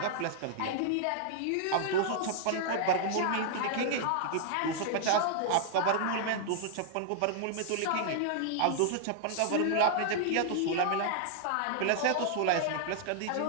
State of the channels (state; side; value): different; both; correlation -0.01